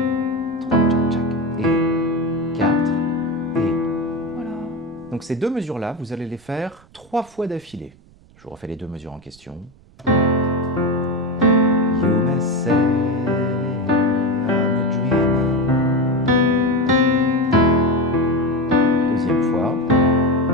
3, tchac, tchac, et 4, et voilà. Donc ces deux mesures-là, vous allez les faire 3 fois d'affilée. Je vous refais les deux mesures en question. You may say I'm a dreamer. Deuxième fois.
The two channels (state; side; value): noise; right; rumble, 27 dB below the sound